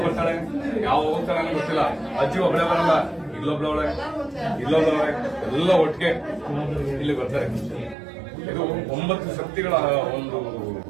ಬರ್ತಾಳೆ, ಯಾವ ಹೋಗ್ತಾಳೆ ಅನ್ನೋ ಗೊತ್ತಿಲ್ಲ. ಅಜ್ಜಿ ಒಬ್ಬಳೆ ಬರಲ್ಲ, ಇಲ್ಲೊಬ್ಳವಳೆ ಇಲ್ಲೊಬ್ಳವಳೆ ಎಲ್ಲ ಒಟ್ಟಿಗೆ ಇಲ್ಲಿ ಬರ್ತಾರೆ. ಇದು 9 ಶಕ್ತಿಗಳ ಒಂದು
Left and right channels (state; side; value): drops out; left; at 8.0 s